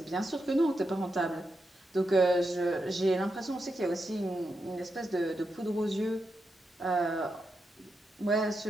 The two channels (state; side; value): normal; both; correlation 0.86